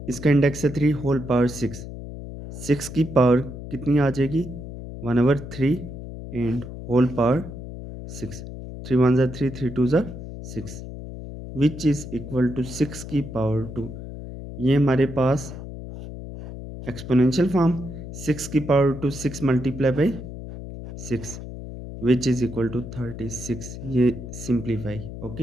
इसका इंडेक्स है 3 होल पावर 6, 6 की पावर कितनी आ जाएगी 1/3 and whole power 6, 3 1s are 3 3 2s are 6 which is equal to 6 की पावर 2। ये हमारे पास एक्सपोनेंशियल फॉर्म 6 की power 2 6 multiply by 6 which is equal to 36। ये सिंप्लीफाई।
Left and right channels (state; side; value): noise; left; hum, 10 dB below the sound